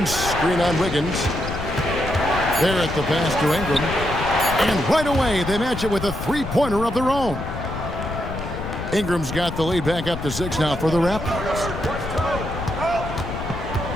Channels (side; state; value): left; noise; rumble, 7 dB below the sound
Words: screen on Wiggins. Barrett the pass to Ingram. And right away, they match it with a three-pointer of their own. Ingram's got the lead back up to 6 now for the Raptors.